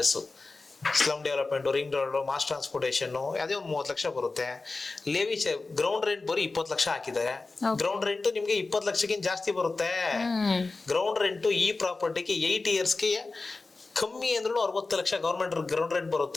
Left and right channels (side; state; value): right; quieter; 3.7 dB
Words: slum development, ring road, mass transportation ಅದೇ ಒಂದು 30 ಲಕ್ಷ ಬರುತ್ತೆ. ಲೇವಿ ಗ್ರೌಂಡ್ ರೆಂಟ್ ಬರೀ 20 ಲಕ್ಷ ಹಾಕಿದ್ದಾರೆ. ಗ್ರೌಂಡ್ ರೆಂಟ್ ನಿಮ್ಗೆ 20 ಲಕ್ಷಕ್ಕಿಂತ ಜಾಸ್ತಿ ಬರುತ್ತೆ. ಗ್ರೌಂಡ್ ರೆಂಟ್ ಈ ಪ್ರಾಪರ್ಟಿಗೆ 8 yearsಗೆ ಕಮ್ಮಿ ಅಂದ್ರೂ 60 ಲಕ್ಷ ಗೌರ್ಮೆಂಟ್ ಗ್ರೌಂಡ್ ರೆಂಟ್